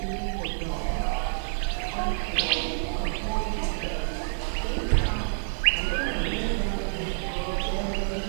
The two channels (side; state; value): left; silent; digital silence